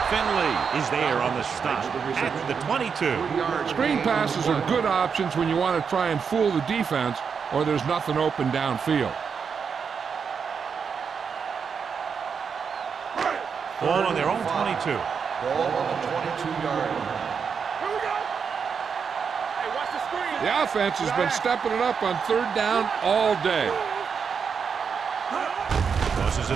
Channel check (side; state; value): left; quieter; 6.3 dB